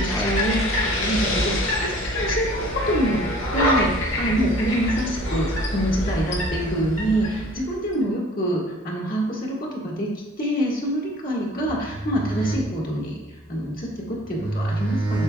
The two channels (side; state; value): both; normal; correlation 0.51